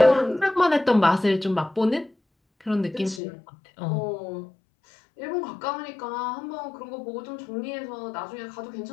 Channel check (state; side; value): drops out; right; at 3.2 s